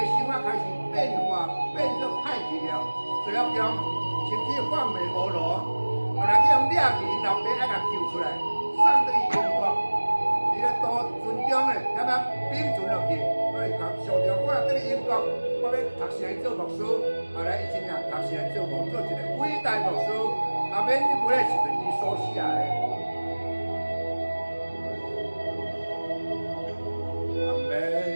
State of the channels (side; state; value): both; inverted; correlation -1.00